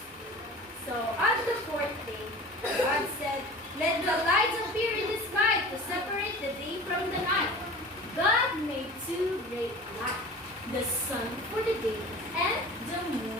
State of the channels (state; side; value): normal; both; correlation 0.38